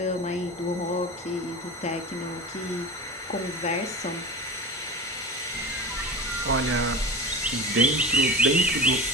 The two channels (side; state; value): both; normal; correlation 0.31